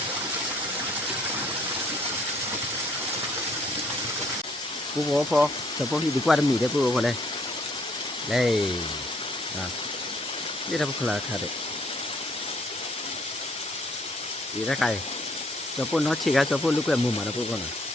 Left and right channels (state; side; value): normal; both; correlation 0.64